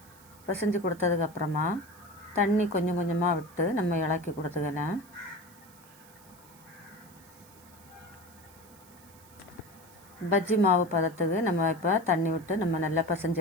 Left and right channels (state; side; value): noise; right; hiss, 24 dB below the sound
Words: பிசைஞ்சு கொடுத்ததுக்கப்புறமா தண்ணி கொஞ்சம் கொஞ்சமாக விட்டு நம்ம இளக்கி கொடுத்துக்கலாம். பஜ்ஜி மாவு பதத்துக்கு நம்ம இப்போ தண்ணி விட்டு நம்ம நல்லா